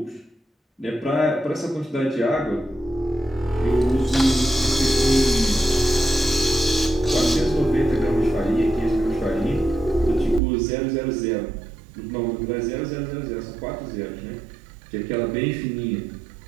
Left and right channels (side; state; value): left; drops out; at 10.4 s